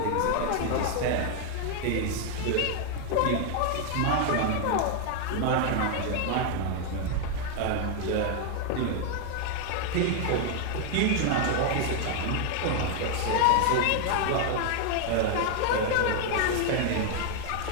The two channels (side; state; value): both; different; correlation 0.00